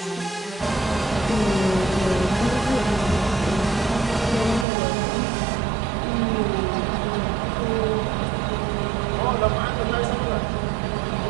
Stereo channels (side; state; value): left; drops out; at 4.7 s